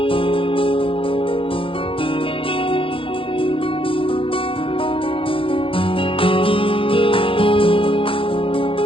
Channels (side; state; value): right; late; 0.26 ms